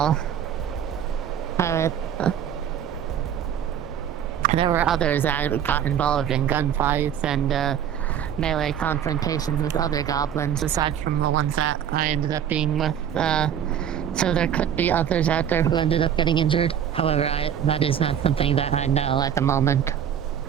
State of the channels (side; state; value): left; quieter; 9.3 dB